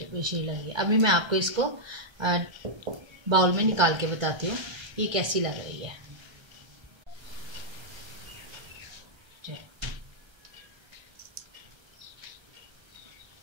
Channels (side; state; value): left; late; 1.3 ms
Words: शीरी लगी है। अभी मैं आपको इसको बाउल में निकाल के बताती हूँ ये कैसी लग रही है।